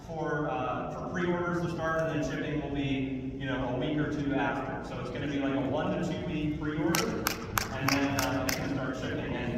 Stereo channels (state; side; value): identical; both; correlation 1.00